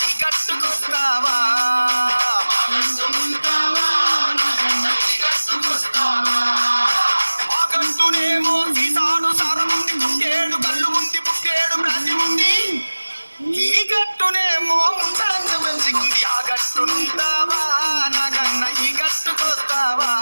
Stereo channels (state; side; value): inverted; both; correlation -1.00